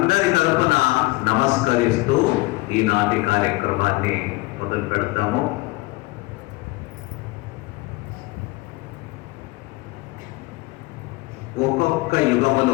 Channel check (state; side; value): quieter; right; 21.9 dB